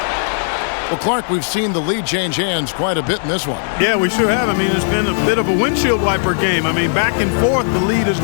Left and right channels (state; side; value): silent; right; digital silence